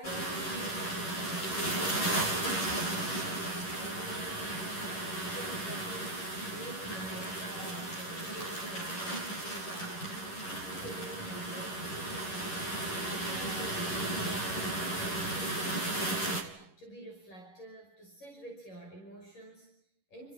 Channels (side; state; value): right; late; 11 ms